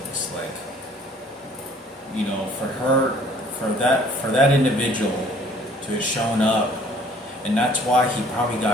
Like, for that individual to have shown up, and that's why he probably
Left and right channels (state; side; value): normal; both; correlation 0.55